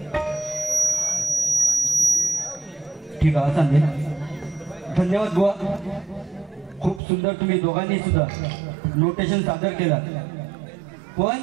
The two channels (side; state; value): left; drops out; at 7.0 s